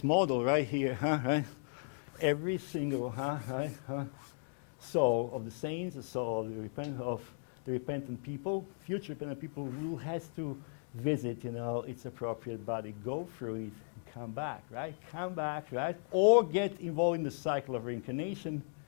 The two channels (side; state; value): right; silent; digital silence